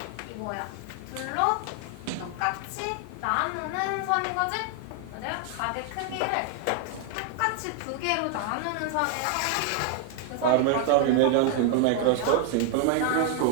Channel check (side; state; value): both; different; correlation 0.00